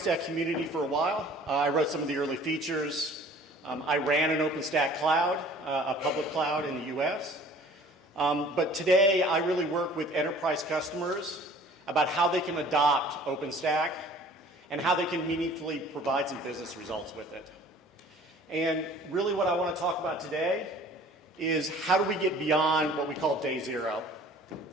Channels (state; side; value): normal; both; correlation 0.50